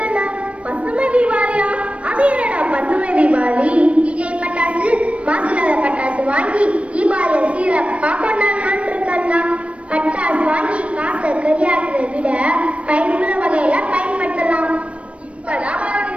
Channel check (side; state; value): left; late; 0.062 ms